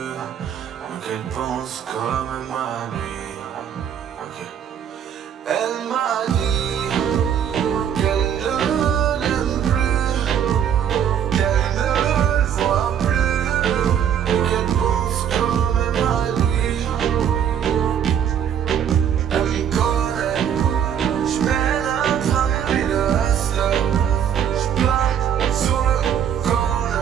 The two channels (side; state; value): left; quieter; 8.9 dB